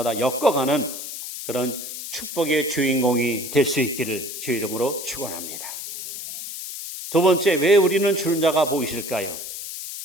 엮어가는 그런 축복의 주인공이 될 수 있기를 주 이름으로 축원합니다. 두 번째, 왜 우리는 주는 자가 복이 있을까요?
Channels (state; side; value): noise; left; hiss, 8 dB below the sound